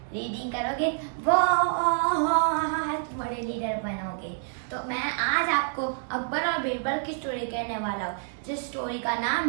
रीडिंग करोगे बहुत बड़े लीडर बनोगे। तो मैं आज आपको अकबर और बीरबल की स्टोरी कहने वाला हूँ, जिस स्टोरी का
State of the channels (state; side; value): silent; left; digital silence